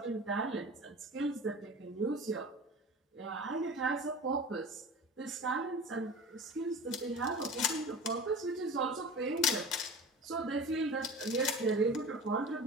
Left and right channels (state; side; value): normal; both; correlation 0.35